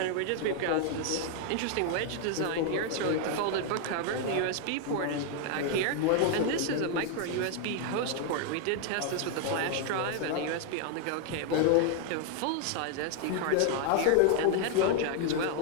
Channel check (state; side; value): different; both; correlation 0.00